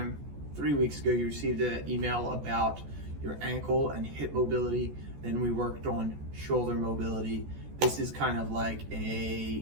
3 weeks ago, you received an email about your ankle and hip mobility. Then we worked on shoulder mobility. This is kind of like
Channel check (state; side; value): late; left; 14 ms